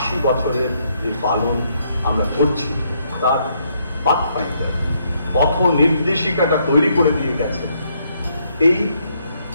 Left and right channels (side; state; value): both; inverted; correlation -0.73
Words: বছরের যে পালন আমরা করছি তার পাথফাইন্ডার, পথ নির্দেশিকাটা তৈরি করে দিয়ে গেছেন। এই